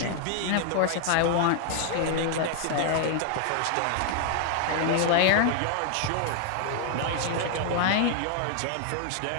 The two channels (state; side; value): different; both; correlation 0.00